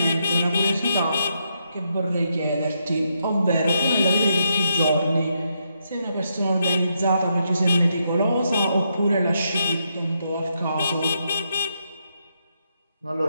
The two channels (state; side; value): inverted; both; correlation -0.79